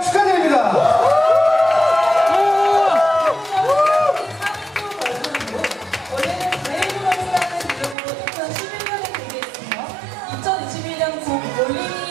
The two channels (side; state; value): left; drops out; at 8.0 s